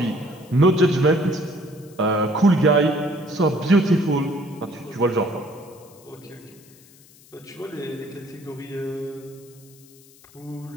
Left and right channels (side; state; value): left; noise; hiss, 26 dB below the sound